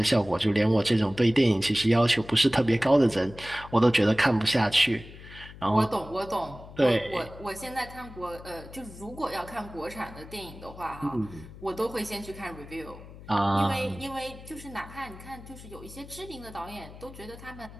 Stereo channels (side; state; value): left; noise; hum, 16 dB below the sound